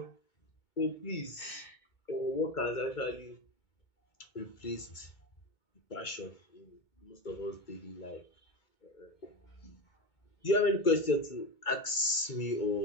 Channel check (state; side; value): late; right; 2.2 ms